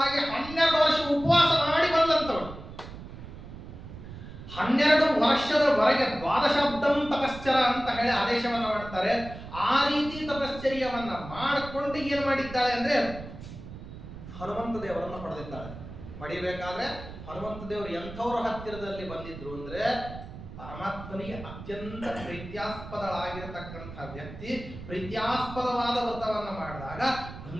12 ವರ್ಷ ಉಪವಾಸ ಮಾಡಿ ಬಂದಂತವಳು. 12 ವರ್ಷದವರೆಗೆ 12 ತಪಶ್ಚರ ಅಂತ ಹೇಳಿ ಆದೇಶವನ್ನ ಮಾಡ್ತಾರೆ. ಆ ರೀತಿ ತಪಶ್ಚರ್ಯವನ್ನ ಮಾಡಿಕೊಂಡು ಏನ್ ಮಾಡಿದ್ದಾಳೆ ಅಂದ್ರೆ ಹನುಮಂತ ದೇವರನ್ನು ಪಡೆದಿದ್ದಾಳೆ. ಪಡಿಬೇಕಾದ್ರೆ ಹನುಮಂತ ದೇವರು ಎಂಥವ್ರ ಹತ್ತಿರದಲ್ಲಿ ಬಂದಿದ್ರು ಅಂದ್ರೆ ಪರಮಾತ್ಮನಿಗೆ ಅತ್ಯಂತ ಪ್ರೀತ್ಯಾಸ್ಪದಳಾಗಿರತಕ್ಕಂಥ ವ್ಯಕ್ತಿ ಪ್ರೀತ್ಯಾಸ್ಪದವಾದ ವ್ರತವನ್ನ ಮಾಡಿದಾಗ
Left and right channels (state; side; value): noise; right; rumble, 13 dB below the sound